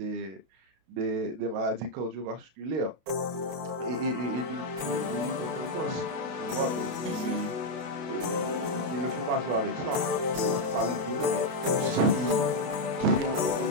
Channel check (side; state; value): left; late; 32 ms